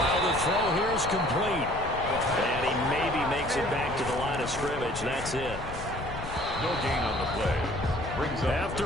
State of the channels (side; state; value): left; noise; rumble, 10 dB below the sound